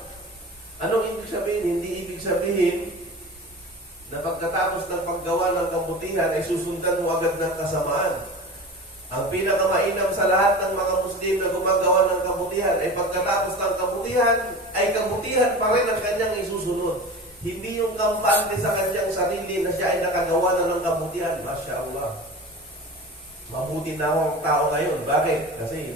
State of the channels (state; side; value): normal; both; correlation 0.33